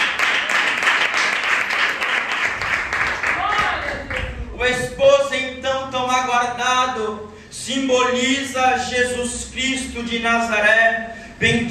O esposo então tão aguardado simboliza Jesus Cristo de Nazaré.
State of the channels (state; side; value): identical; both; correlation 1.00